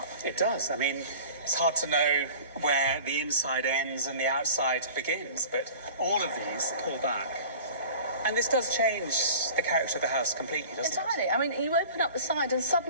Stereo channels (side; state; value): both; inverted; correlation -0.42